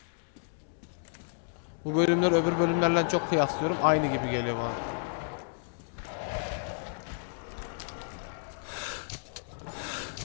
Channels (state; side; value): silent; right; digital silence